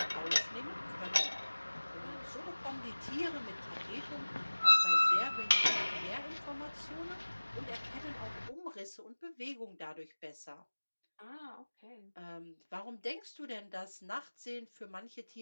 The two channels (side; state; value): both; inverted; correlation -1.00